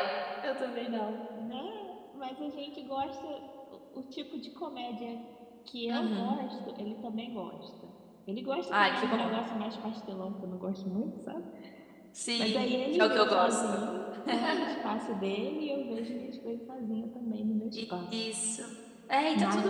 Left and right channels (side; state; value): both; identical; correlation 1.00